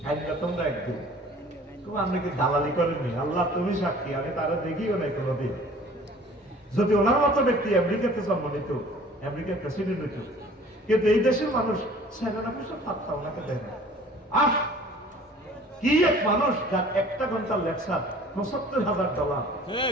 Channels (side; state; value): both; normal; correlation 0.50